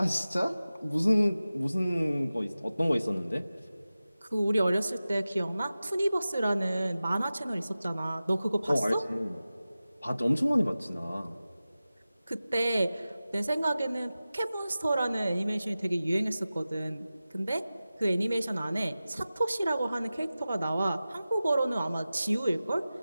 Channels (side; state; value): both; inverted; correlation -0.95